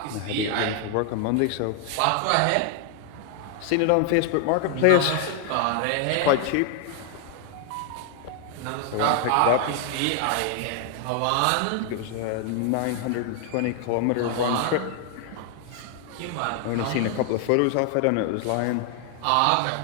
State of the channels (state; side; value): different; both; correlation 0.00